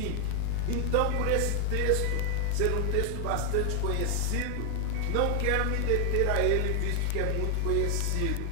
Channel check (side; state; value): both; different; correlation 0.00